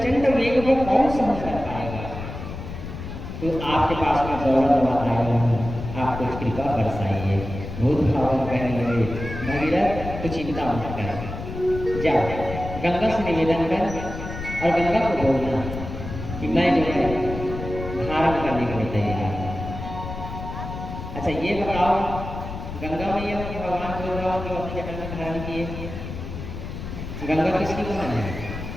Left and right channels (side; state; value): left; noise; rumble, 8 dB below the sound